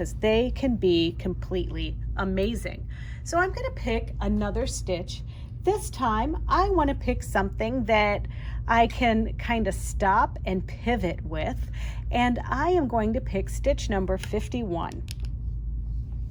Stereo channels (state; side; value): identical; both; correlation 1.00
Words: they can be completely amazing. So I'm going to pick another stitch. This time I want to pick something that I can kind of stop and pivot with, and I am going to pick stitch number 51.